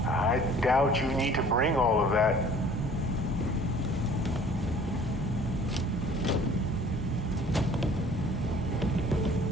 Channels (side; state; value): both; normal; correlation 0.51